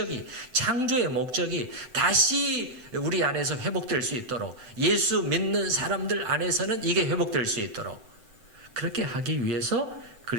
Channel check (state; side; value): late; left; 7.9 ms